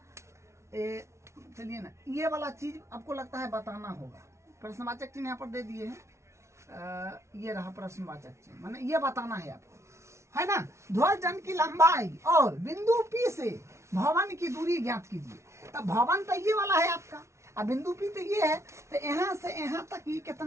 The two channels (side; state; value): left; late; 0.13 ms